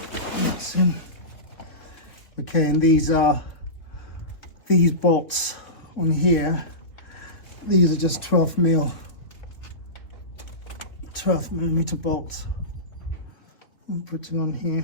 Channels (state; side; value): late; right; 3.2 ms